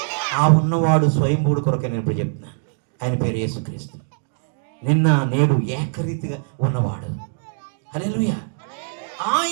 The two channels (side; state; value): left; silent; digital silence